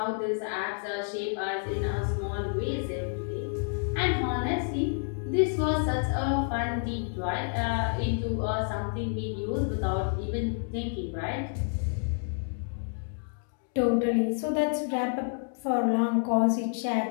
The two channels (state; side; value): silent; right; 58 dB below the other